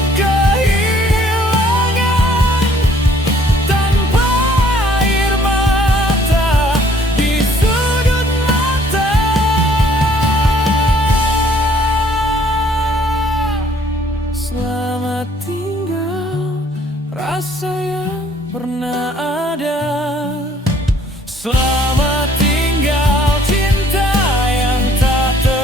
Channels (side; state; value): both; normal; correlation 0.61